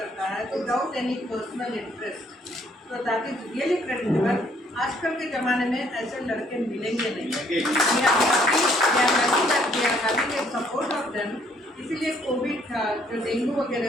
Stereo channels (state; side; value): normal; both; correlation 0.65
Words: है विदाउट एनी पर्सनल इंटरेस्ट। तो दैट इज रियली क्रेडिटेबल। आजकल के ज़माने में ऐसे लड़के मिलेंगे नहीं। Support of them. इसीलिए कोविड था, जो डेंगू वगैरह